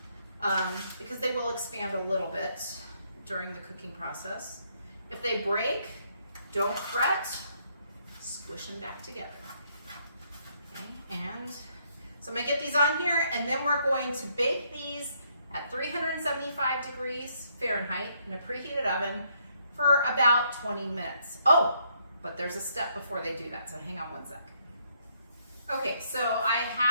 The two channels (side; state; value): both; inverted; correlation -0.72